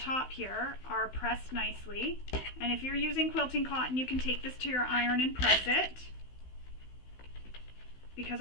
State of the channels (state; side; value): late; right; 16 ms